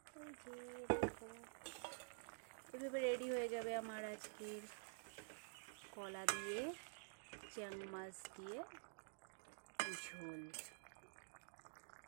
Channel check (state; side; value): silent; left; digital silence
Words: এই যে দেখো এভাবে রেডি হয়ে যাবে আমার আজকের কলা দিয়ে চ্যাং মাছ দিয়ে ঝোল।